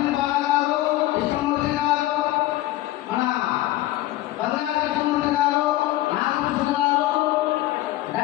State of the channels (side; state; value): right; quieter; 16.4 dB